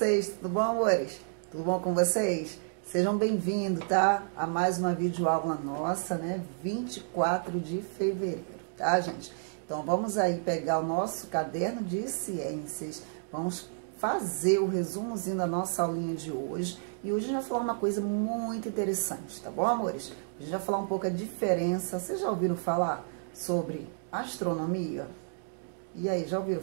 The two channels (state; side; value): silent; left; digital silence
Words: tudo bom, amores? Tudo bom com vocês? Sejam bem-vindos, tá? A mais uma videoaula nossa, né? 24 de fevereiro, tá, gente? Então, vamos aí pegar o nosso caderno de ciências, vamos fazer o resumozinho da nossa aulinha de hoje. E hoje a gente vai falar uma coisa muito interessante, tá bom, amores? Hoje a gente vai falar um pouco a diferença. Vocês já ouviram falar sobre astronomia? E aí, já ouviram